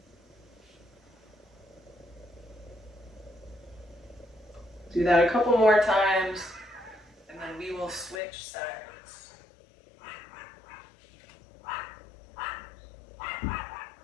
Do that a couple more times, and then we will switch sides.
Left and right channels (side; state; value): right; drops out; at 8.2 s